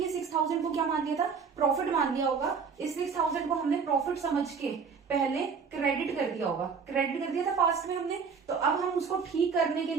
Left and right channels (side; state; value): left; quieter; 5.7 dB